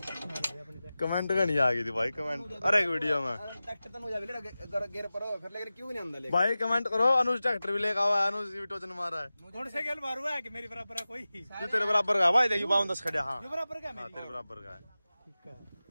कमेंट का नहीं आ गई थी भाई कमेंट। अरे एक वीडियो में ट्रैक्टर तो मुझे गेर पर फिर लेकर क्यों नहीं अंदर ले भाई कमेंट करो। अनुज ट्रैक्टर भी लेकर आवा, अनुज भी टोचन मारा है। कौन से गेल मारू है कि मेरी बराबर है कोई? तू तेरे बराबर का भाई देखियो 52 खड़े। हाँ बराबर का हाँ तेरे बराबर का है।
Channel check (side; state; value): both; inverted; correlation -0.96